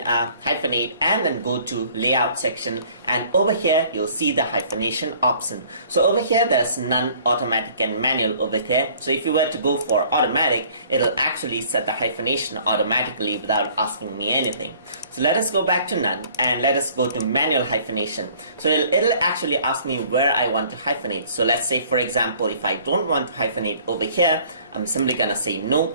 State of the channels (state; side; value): inverted; both; correlation -0.55